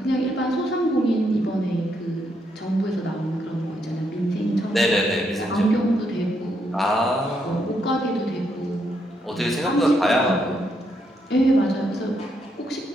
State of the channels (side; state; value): both; normal; correlation 0.77